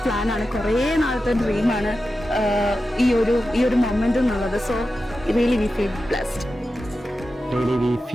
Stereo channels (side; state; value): both; normal; correlation 0.92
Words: പ്ലാനാണ്, കുറേ നാളത്തെ ഡ്രീമാണ് ഈ ഒരു മൊമെന്റ് എന്നുള്ളത്. So really we feel blessed. Really we